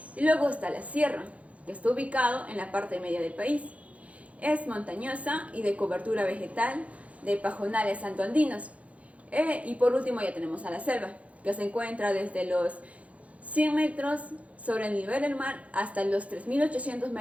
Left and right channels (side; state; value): left; late; 0.065 ms